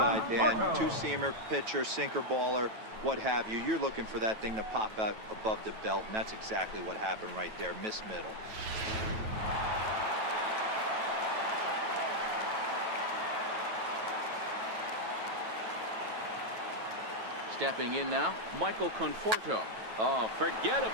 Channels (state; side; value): late; left; 9.2 ms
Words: Dan, Conforto. two-seamer, pitcher, sinker baller, what have you. You're looking for that thing to pop out above the belt, and that's exactly what happened right there. Miss middle. Stepping in now, Michael Conforto. Oh, forget